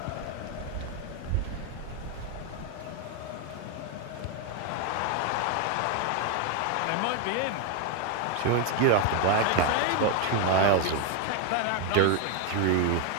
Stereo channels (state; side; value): different; both; correlation 0.01